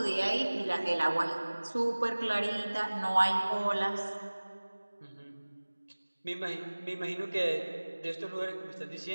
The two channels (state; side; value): inverted; both; correlation -1.00